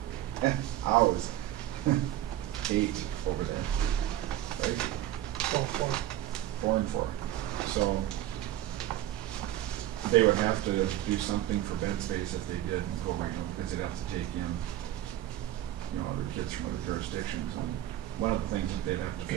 8 hours. 8 over there, right? 4 and 4. So they would have to do something for bed space if they did go regional, because they'd have to take in, other kids from other jurisdictions. And one of the things that they'd have to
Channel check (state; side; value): quieter; left; 13.3 dB